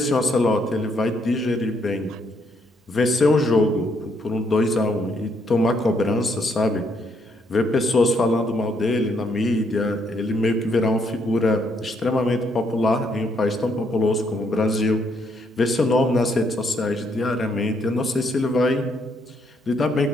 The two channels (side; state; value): both; normal; correlation 0.73